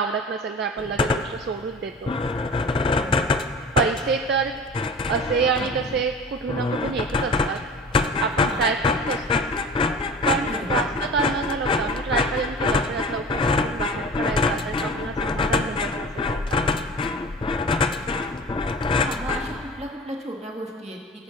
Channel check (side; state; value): both; normal; correlation 0.37